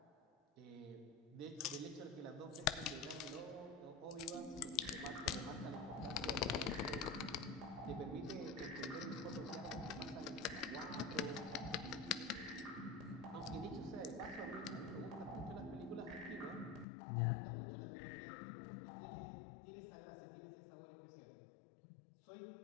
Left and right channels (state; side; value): drops out; right; at 16.9 s